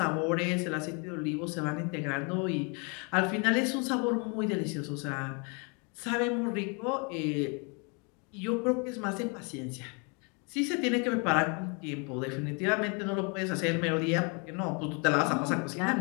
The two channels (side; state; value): right; quieter; 34.2 dB